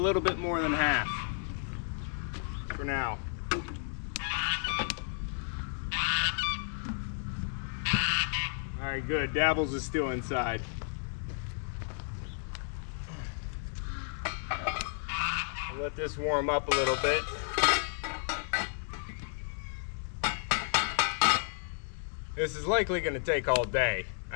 bit more than half for now. All right, good. Dabbles is still inside. I'll let this warm up a little bit. This is likely going to take all day.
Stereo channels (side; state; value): right; silent; digital silence